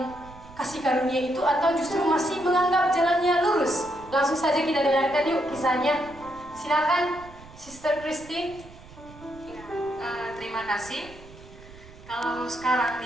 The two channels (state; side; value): noise; right; rumble, 20 dB below the sound